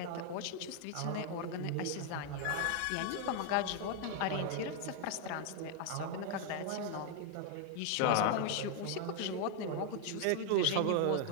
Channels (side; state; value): both; different; correlation 0.00